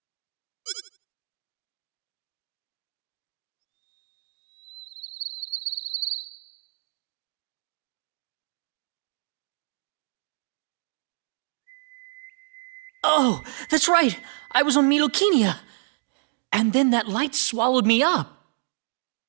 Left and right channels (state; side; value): silent; left; digital silence